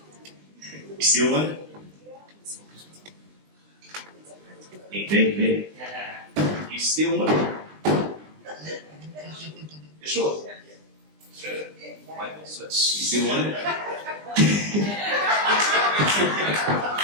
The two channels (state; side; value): late; left; 20 ms